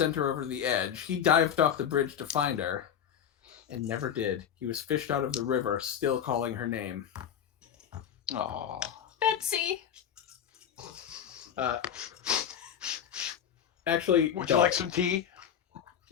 her over the edge. He dived off the bridge to find her and never did. He was fished out of the river, still calling her name. Oh, Betsy. Actually, would you like some tea?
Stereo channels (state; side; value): quieter; right; 8.9 dB